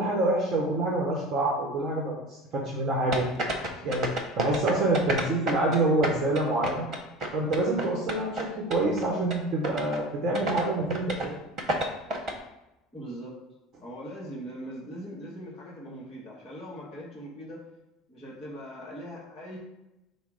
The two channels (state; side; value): normal; both; correlation 0.34